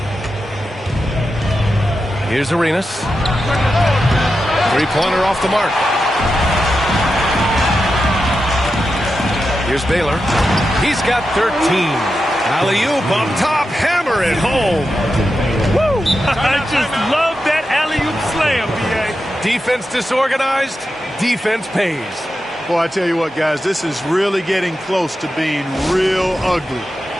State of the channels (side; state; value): both; normal; correlation 0.89